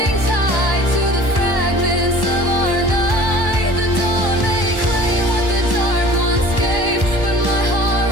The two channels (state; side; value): late; left; 1.1 ms